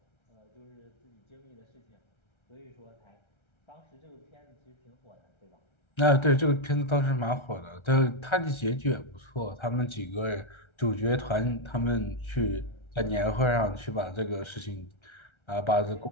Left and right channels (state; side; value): late; right; 1.3 ms